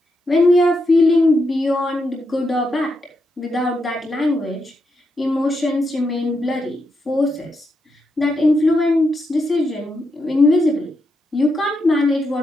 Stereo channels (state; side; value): normal; both; correlation 0.83